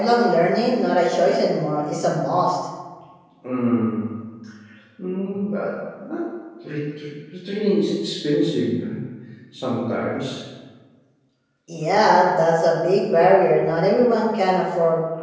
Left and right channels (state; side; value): identical; both; correlation 1.00